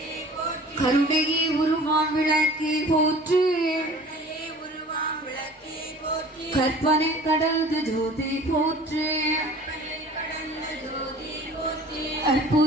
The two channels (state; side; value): normal; both; correlation 0.45